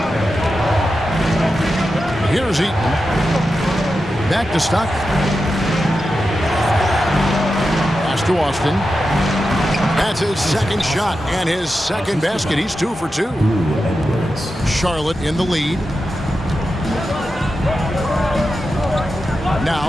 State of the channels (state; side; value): normal; both; correlation 0.90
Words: Here's Eaton. Back to Stockton. Pass to Austin. That's his 2nd shot and his 2nd basket. He's 2 for 2. Charlotte in the lead.